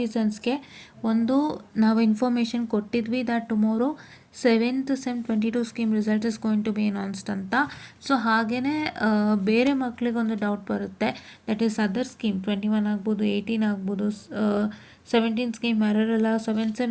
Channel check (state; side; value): identical; both; correlation 1.00